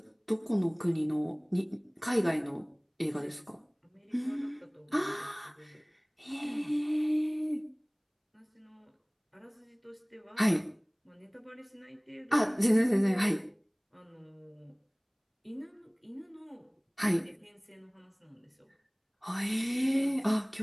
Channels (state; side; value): identical; both; correlation 1.00